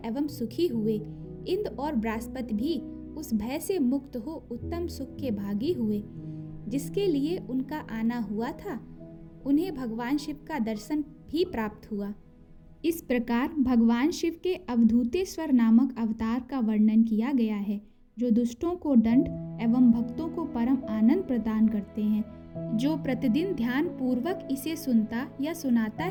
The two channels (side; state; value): both; identical; correlation 1.00